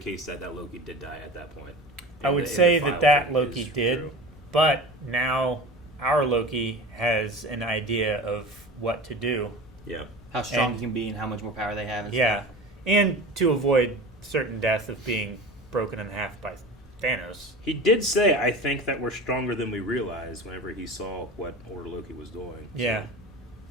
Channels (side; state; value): both; normal; correlation 0.34